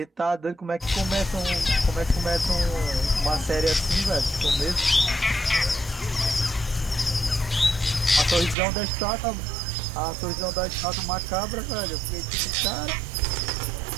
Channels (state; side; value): drops out; left; at 8.6 s